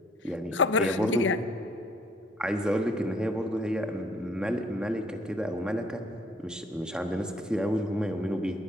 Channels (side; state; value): both; normal; correlation 0.62